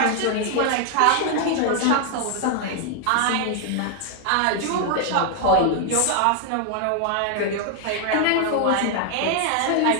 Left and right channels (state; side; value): different; both; correlation 0.00